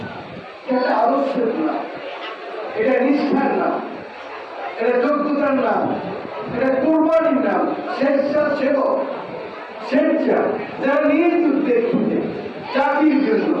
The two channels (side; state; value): both; identical; correlation 1.00